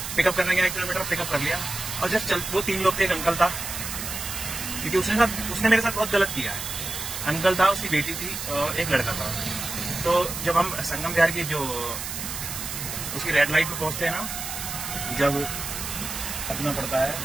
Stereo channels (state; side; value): noise; right; hiss, 6 dB below the sound